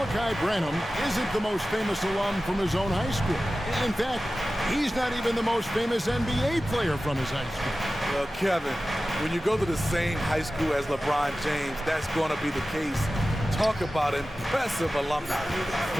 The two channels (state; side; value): normal; both; correlation 0.95